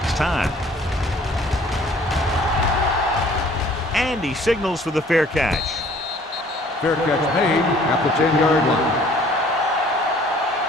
time. And he signals for the fair catch. Fair catch made at the 10-yard line.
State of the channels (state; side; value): normal; both; correlation 0.55